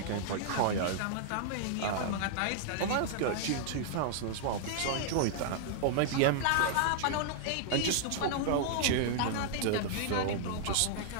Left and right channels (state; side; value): different; both; correlation -0.01